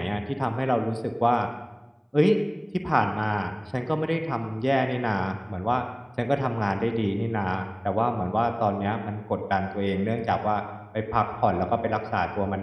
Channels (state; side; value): identical; both; correlation 1.00